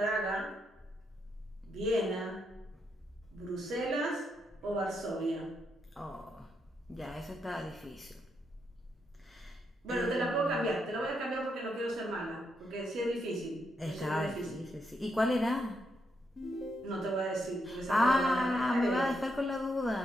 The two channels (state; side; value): normal; both; correlation 0.80